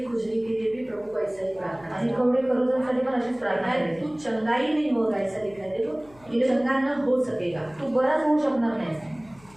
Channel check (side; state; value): left; noise; hum, 26 dB below the sound